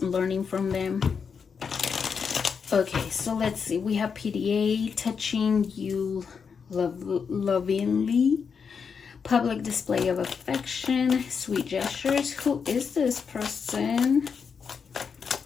learning from them. Okay, so let's see. We have PDA, touching you lovingly, public display of affection, sweet gestures. Who is this person?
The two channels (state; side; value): quieter; right; 6.1 dB